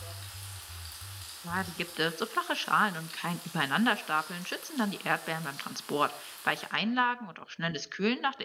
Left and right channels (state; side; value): identical; both; correlation 1.00